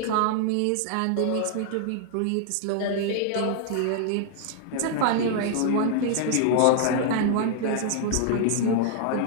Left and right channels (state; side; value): different; both; correlation -0.01